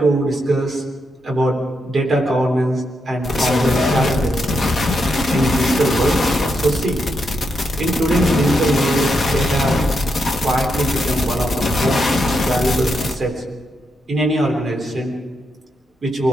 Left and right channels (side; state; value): both; normal; correlation 0.82